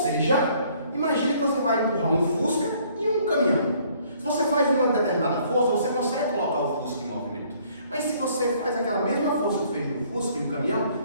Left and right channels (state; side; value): inverted; both; correlation -0.61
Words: imagine que você vai empurrar um Fusca e um caminhão. Se você faz uma determinada força, você consegue colocar o Fusca em movimento. Mas se você faz aquela mesma força que fez no Fusca e um caminhão,